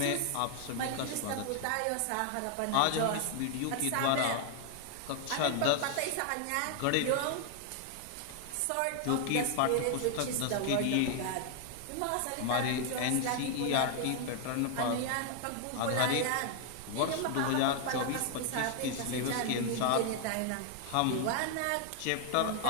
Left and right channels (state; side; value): different; both; correlation 0.00